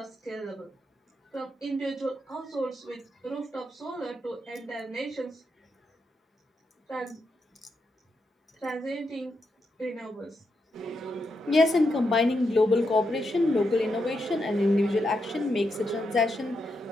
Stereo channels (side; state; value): both; normal; correlation 0.83